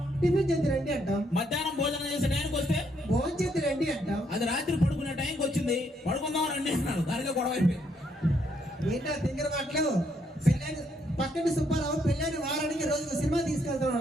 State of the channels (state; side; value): normal; both; correlation 0.73